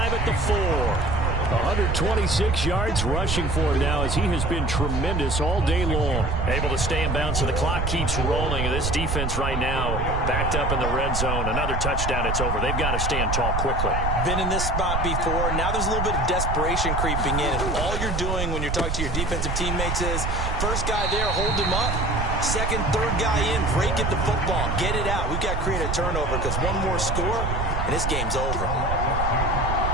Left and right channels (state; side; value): noise; right; rumble, 1 dB below the sound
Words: at the 4. 126 yards rushing for him now as he has been tremendous all day long. Able to stay in bounds, so the clock keeps rolling. And this defense right now backed up in the red zone. Another touchdown, it's over. They've got to stand tall quickly. Been in this spot before. Now there's a little bit of desperation creeping in. And all you're doing when you're talking to your defensive teammates is, first guy there, hold him up. Second, third guy in, break it the football. Get it out. We've got to create a turnover because one more score, and this game's over.